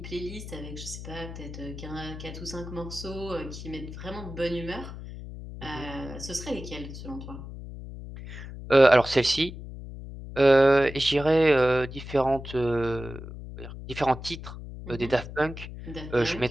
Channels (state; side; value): noise; left; hum, 11 dB below the sound